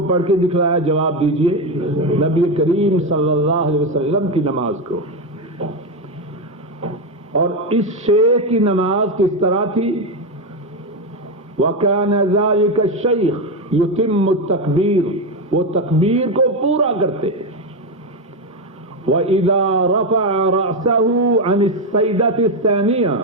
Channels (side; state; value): both; normal; correlation 0.10